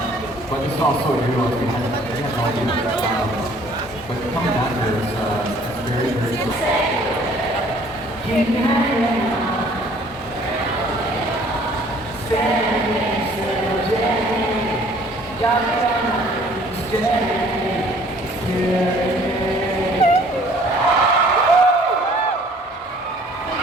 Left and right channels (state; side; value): normal; both; correlation 0.56